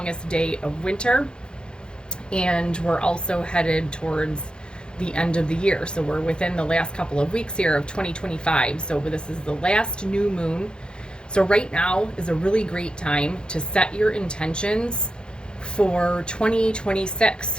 day of winter, and we're also headed towards the end of the year. So we're within the last couple of weeks here of 2025. So this is the last new moon. So right now is a really great time to set your intentions for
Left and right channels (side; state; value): right; late; 0.050 ms